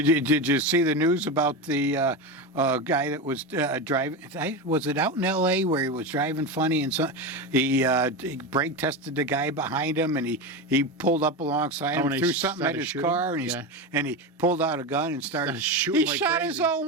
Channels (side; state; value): both; normal; correlation 0.18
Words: you see the news about the guy that was driving? Was it out in L.A. where he was driving funny and he brake tested the guy behind him and he pulled up alongside him, and he threw something at started his shooting? car and he pulled out a gun and started shooting He like shot crazy. his own